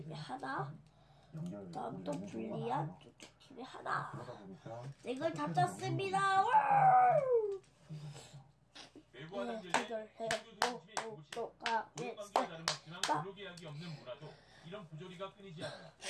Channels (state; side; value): identical; both; correlation 1.00